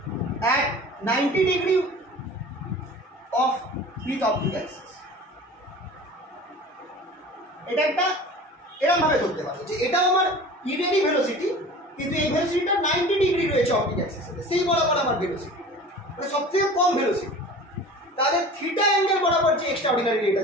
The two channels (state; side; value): normal; both; correlation 0.40